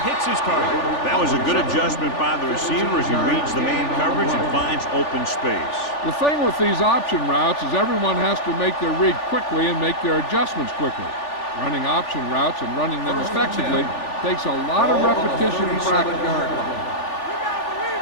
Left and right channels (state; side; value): late; right; 3.4 ms